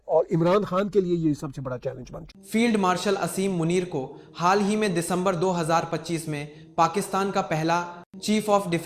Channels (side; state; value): both; identical; correlation 1.00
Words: और इमरान खान के लिए ये सबसे बड़ा चैलेंज बन चुका है। फील्ड मार्शल असीम मुनीर को हाल ही में दिसंबर 2025 में पाकिस्तान का पहला chief of